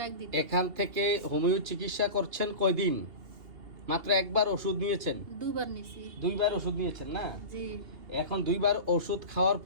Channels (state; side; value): late; left; 2.7 ms